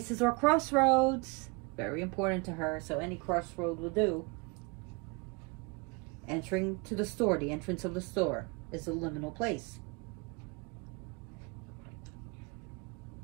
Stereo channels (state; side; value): quieter; left; 29.2 dB